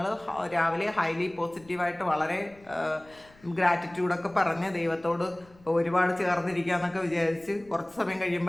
രാവിലെ ഹൈലി പോസിറ്റീവായിട്ട് വളരെ ഗ്രാറ്റിറ്റ്യൂഡൊക്കെ പറഞ്ഞ് ദൈവത്തോട് ഒരുപാട് ചേർന്നിരിക്കുക എന്നൊക്കെ വിചാരിച്ച് കുറച്ച് സമയം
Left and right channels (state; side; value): noise; left; rumble, 27 dB below the sound